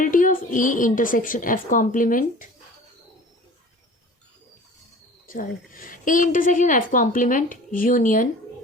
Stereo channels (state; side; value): normal; both; correlation 0.43